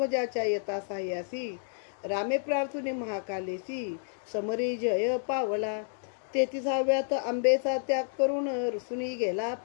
येता साह्यासी, रामे प्रार्थुनी महाकालेसी, समरी जय पावला. 33व्यात आंबेचा त्याग करून रुसुनी गेला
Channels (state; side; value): silent; right; digital silence